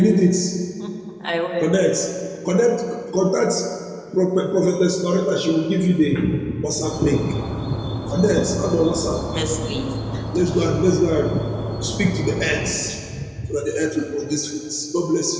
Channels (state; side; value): identical; both; correlation 1.00